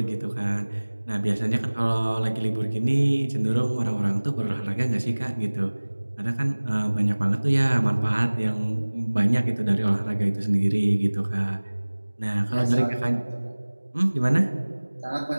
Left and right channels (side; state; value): both; inverted; correlation -1.00